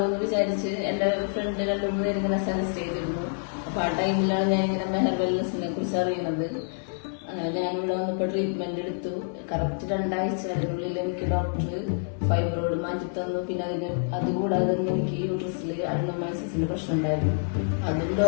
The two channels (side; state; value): right; silent; 60 dB below the other